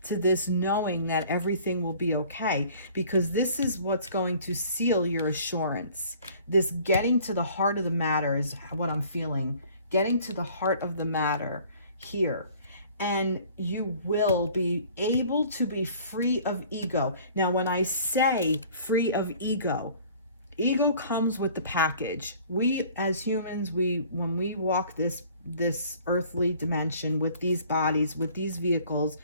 to this knowing that everything will be okay, because this is what's going to seal your assurance. This getting to the heart of the matter is what I'm feeling. Getting to the heart of the matter here. And you will be able to be free of ego. Now, when I say free of ego, ego comes with the package. We as humans, when we walk this earthly dimension with these bodies, with these vehicles,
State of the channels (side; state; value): both; inverted; correlation -0.52